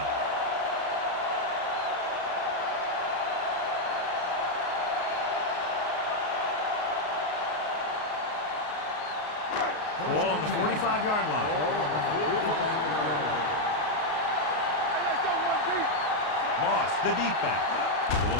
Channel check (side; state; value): right; late; 33 ms